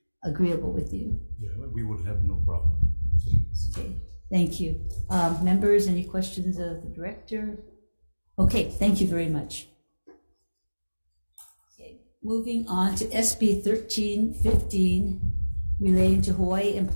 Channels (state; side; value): inverted; both; correlation -1.00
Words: agreeable with you. Yeah, we would have no problem. Okay, thank you. Members, any questions of the director? Okay, thank you very much. Okay, moving on to SB 1315, relating to Hawaii